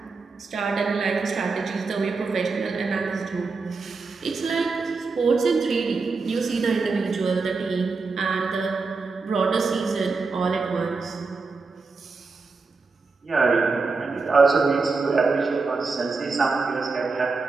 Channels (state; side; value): quieter; left; 4.2 dB